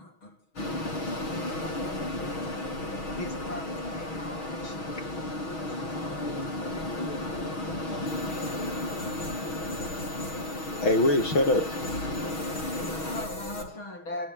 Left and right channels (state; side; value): late; right; 6.3 ms